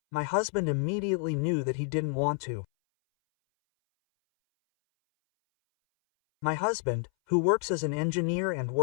my husband immediately knew that he didn't want to. My husband, who works as an engineer and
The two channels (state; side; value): silent; right; 59 dB below the other